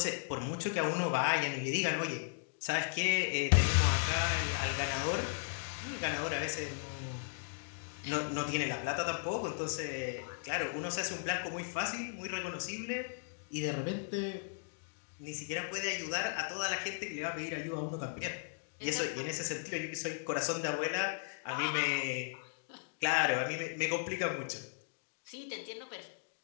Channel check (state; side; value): silent; right; digital silence